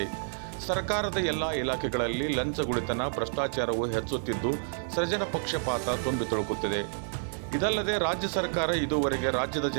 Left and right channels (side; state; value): left; silent; digital silence